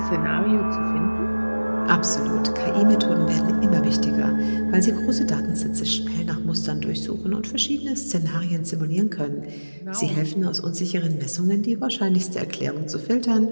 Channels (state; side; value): inverted; both; correlation -1.00